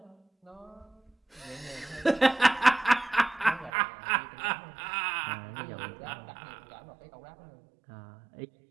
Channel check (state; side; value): drops out; left; at 3.7 s